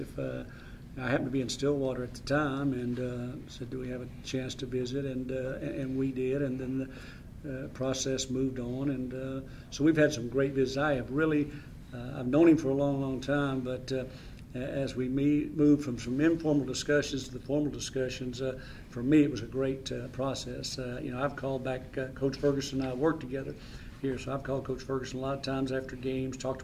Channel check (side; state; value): both; identical; correlation 1.00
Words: I happened to be in Stillwater at the time, and said, "Do we have a chance to visit?" And we did, and then the process moved on, and so we've had some great visits. I have really, I've known him for a long, long time, but as we moved from some informal discussions to the formal discussions, for me it was a great process. I've called back Coach Ferguson and I worked together here, so I've called Coach Ferguson a lot of times after games, talked